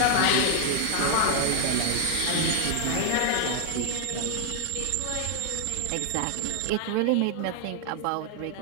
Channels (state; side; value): different; both; correlation 0.00